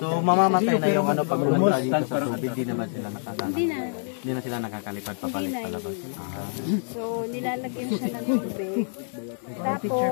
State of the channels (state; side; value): silent; right; digital silence